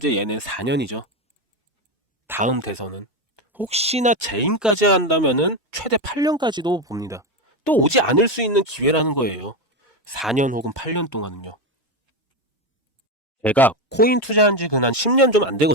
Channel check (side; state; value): both; normal; correlation 0.13